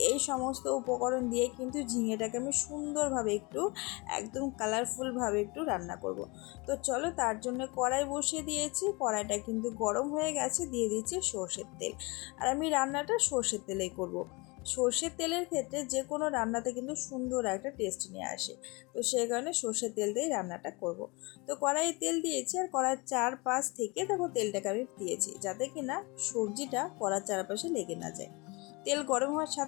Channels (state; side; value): quieter; right; 27.1 dB